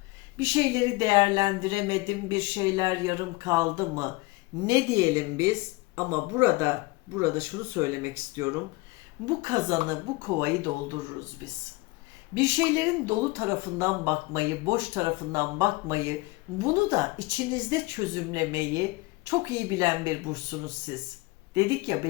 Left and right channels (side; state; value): right; quieter; 23.4 dB